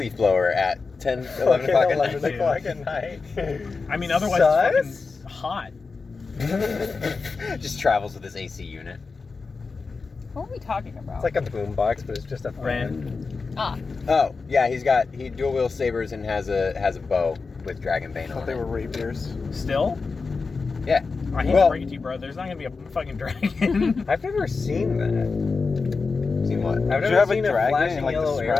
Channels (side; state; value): right; quieter; 4.5 dB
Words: blower at 10, 11 o'clock at night. 11 o'clock at night. I mean, otherwise it's fucking hot. Just travels with his AC unit. What are we talking about? It's like a boombox, but it's just a fan. Ren. Ah, Oh, yeah, he dual wield sabers and has a bow with Dragonbane I thought on they it. were rapiers. Still? Yeah. I hate Well- to break it to you, bro. There's not gonna be a fucking dragon. I've never seen that. Seen what? I've Did never you have a seen dragon flashing and, like, yellow describe